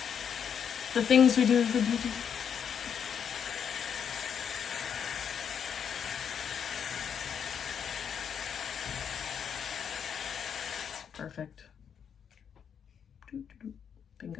The things we do for beauty. Perfect.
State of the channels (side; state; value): right; quieter; 7.8 dB